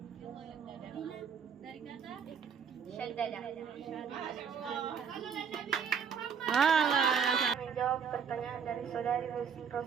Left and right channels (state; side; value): quieter; left; 6.9 dB